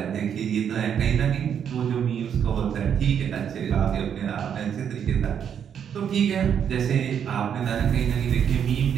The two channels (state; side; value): quieter; left; 8.3 dB